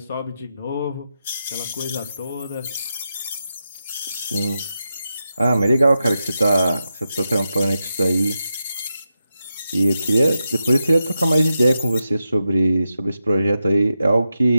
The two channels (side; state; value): both; inverted; correlation -0.89